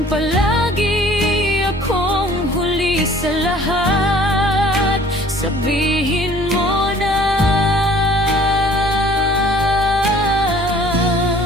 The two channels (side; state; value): both; normal; correlation 0.52